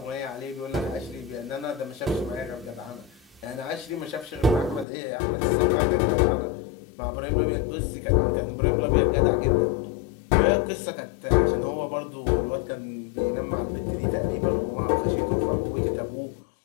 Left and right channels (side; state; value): right; drops out; at 4.9 s